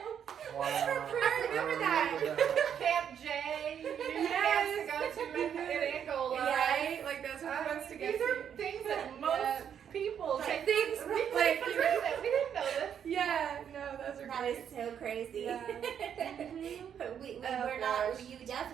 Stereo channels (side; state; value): left; quieter; 8.5 dB